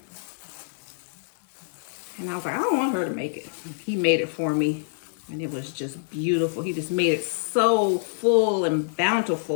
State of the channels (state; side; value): silent; right; digital silence